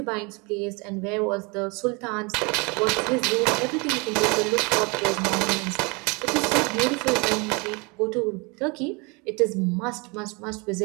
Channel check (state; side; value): quieter; left; 29.3 dB